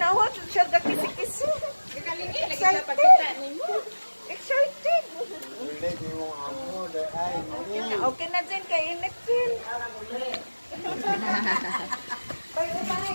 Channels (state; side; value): inverted; both; correlation -1.00